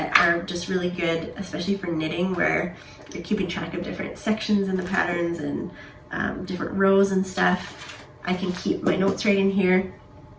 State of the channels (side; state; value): both; identical; correlation 1.00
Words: are just really good, especially for knitting, where you're keeping track of different sections in the patterns and different rows and stuff. I can keep my notes right in here.